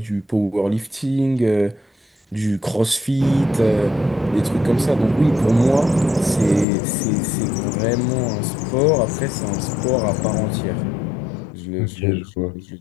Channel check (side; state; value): right; drops out; at 6.7 s